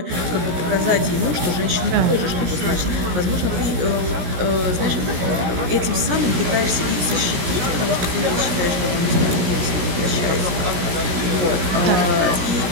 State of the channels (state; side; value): late; left; 17 ms